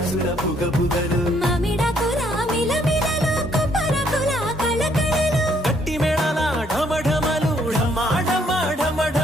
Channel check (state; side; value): normal; both; correlation 0.68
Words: బుగ బుగలు మామిడాకుల మిలమిలలు కొబ్బరకుల కళకళలు గట్టి మేళాల ఢమ ఢమలు ఢమా ఢమ ఢమ